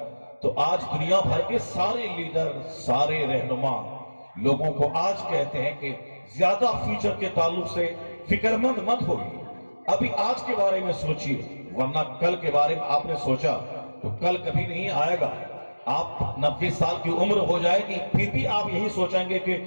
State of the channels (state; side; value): inverted; both; correlation -1.00